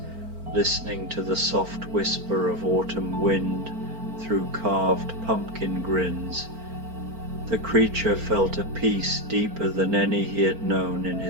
listening to the soft whisper of autumn wind through carved pumpkin grins, the creature felt a peace deeper than any he had known in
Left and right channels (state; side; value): late; left; 4.4 ms